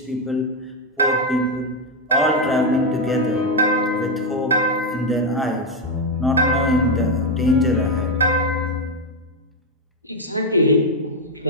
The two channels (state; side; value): normal; both; correlation 0.06